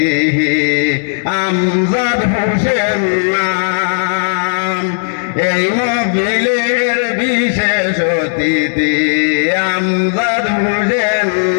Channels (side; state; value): right; silent; digital silence